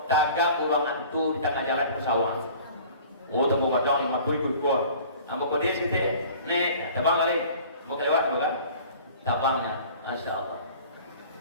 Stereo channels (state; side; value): inverted; both; correlation -0.46